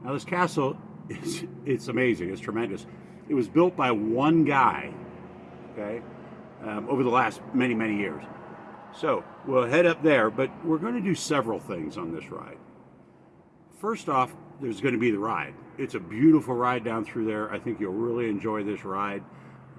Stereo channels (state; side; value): identical; both; correlation 1.00